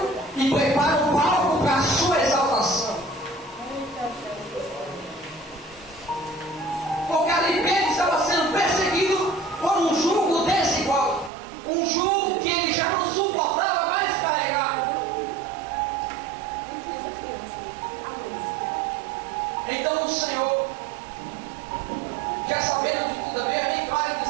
e prepara um palco para a sua exaltação. Porque ali Pedro estava sendo perseguido por um jugo desigual, um jugo que ele já não suportava mais carregar. Então o Senhor, já sabendo de tudo, é bem claro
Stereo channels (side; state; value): left; drops out; at 11.3 s